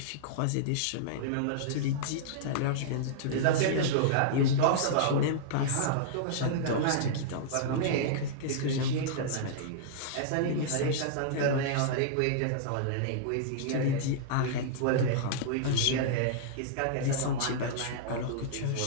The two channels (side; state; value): both; different; correlation -0.02